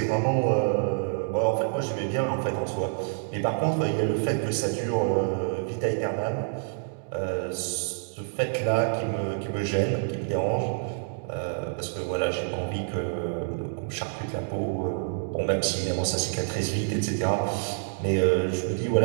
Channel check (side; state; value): left; silent; digital silence